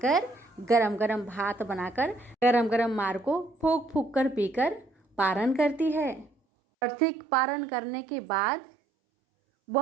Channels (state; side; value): drops out; left; at 6.3 s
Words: गरम गरम भात बनाकर, गरम गरम मार को फूक फूक कर पीकर पारण करती है। और ठीक पारण करने के बाद